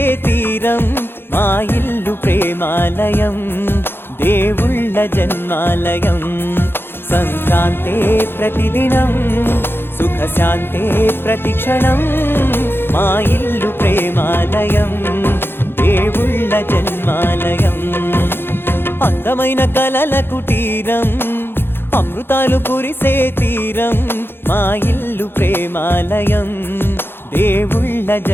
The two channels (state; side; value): late; right; 0.10 ms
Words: తీరం, మా ఇల్లు ప్రేమాలయం, దేవుళ్ళ జన్మాలయం. సంక్రాంతే ప్రతిదినం, సుఖశాంతే ప్రతిక్షణం, మా ఇల్లు ప్రేమాలయం, దేవుళ్ళ జన్మాలయం. అందమైన కలల కుటీరం, అమృతాలు కురిసే తీరం, మా ఇల్లు ప్రేమాలయం, దేవుళ్ళ